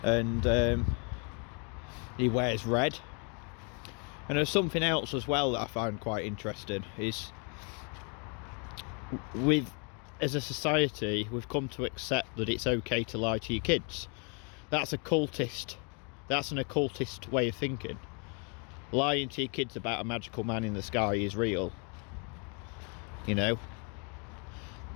And he wears red. And there's something else as well that I find quite interesting, is as a society, we've come to accept that it's okay to lie to your kids. That's an occultist way of thinking. Lying to your kids about a magical man in the sky is real, you know.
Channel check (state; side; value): quieter; right; 36.4 dB